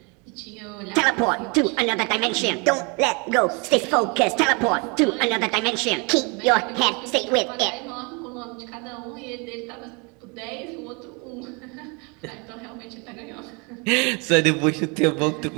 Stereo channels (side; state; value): left; quieter; 31.1 dB